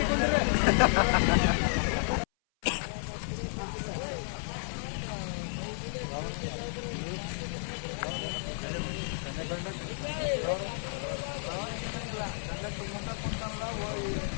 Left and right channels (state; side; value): silent; right; 57 dB below the other